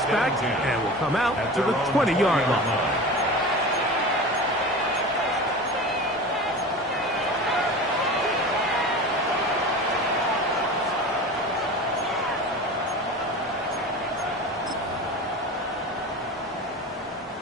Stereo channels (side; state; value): both; normal; correlation 0.32